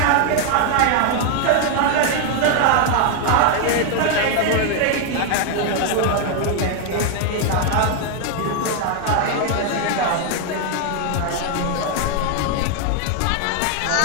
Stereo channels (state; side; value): different; both; correlation 0.00